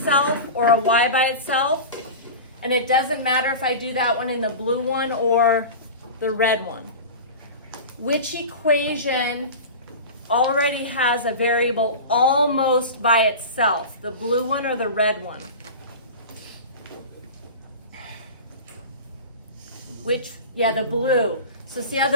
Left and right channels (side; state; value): both; inverted; correlation -0.31